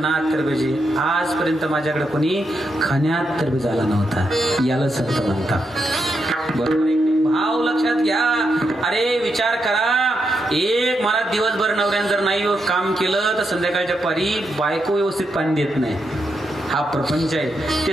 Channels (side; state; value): both; normal; correlation 0.83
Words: तरबेजे. आजपर्यंत माझ्याकडे कोणी खाण्यात तरबेज आला नव्हता. याला संत म्हणतात. बरोबर आहे. भाव लक्षात घ्या. अरे विचार करा, एक मला दिवसभर नवऱ्यानं जर नाही काम केलं तर संध्याकाळच्या पारी बायको व्यवस्थित पाणी देत नाही. हा प्रपंच आहे.